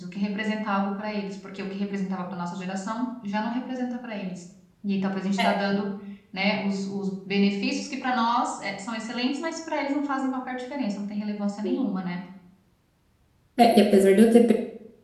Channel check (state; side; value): identical; both; correlation 1.00